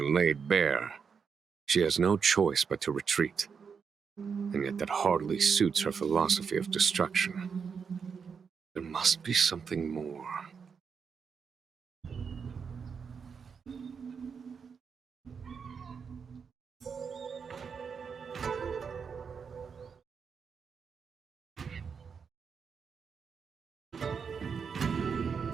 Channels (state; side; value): quieter; left; 6.1 dB